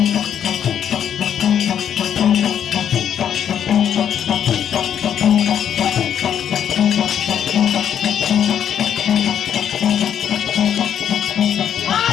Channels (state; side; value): quieter; right; 9.1 dB